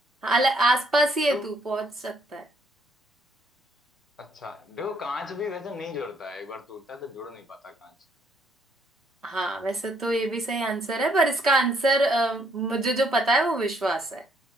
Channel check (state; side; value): normal; both; correlation 0.69